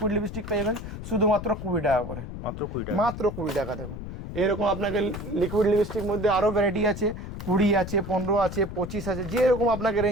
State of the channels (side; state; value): left; noise; rumble, 8 dB below the sound